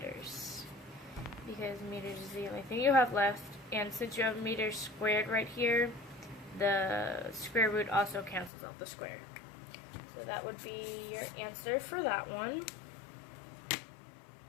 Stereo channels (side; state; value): right; drops out; at 8.5 s